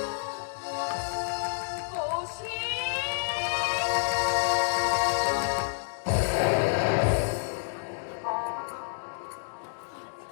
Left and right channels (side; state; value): right; silent; digital silence